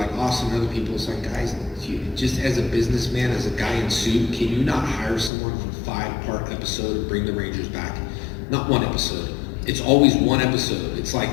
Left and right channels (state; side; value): drops out; right; at 5.3 s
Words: Austin and other people. It's like, guys, just as a businessman, as a guy in suit, can you not hire someone for a 5-part episode to bring the Rangers back? Not one episode. It's always one episode. It's like,